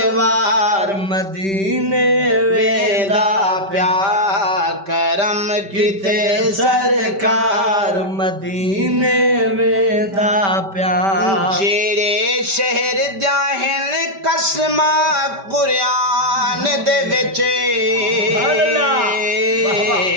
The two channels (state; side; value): late; left; 5.1 ms